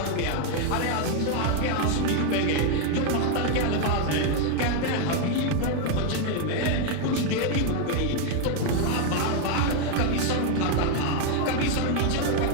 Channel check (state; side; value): different; both; correlation 0.01